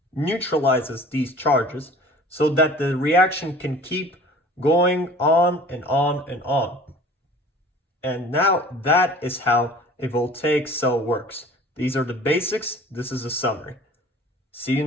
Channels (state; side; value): normal; both; correlation 0.46